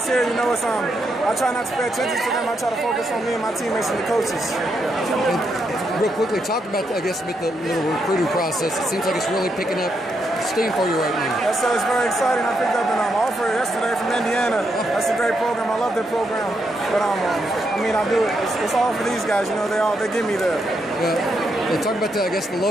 here, it's I try not to pay attention to them. I try to focus on me and my teammates and the coaches. And real quickly, talk about, I guess, with the little recruiting process. It seems like it's really picking up steam for you right now. Yes, sir. It's very exciting. I picked up an offer yesterday from Indiana. That's a great program. I love their program. But I mean, I do it. It's all for these guys. They get me there. Yeah. Talk about the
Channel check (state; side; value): normal; both; correlation 0.80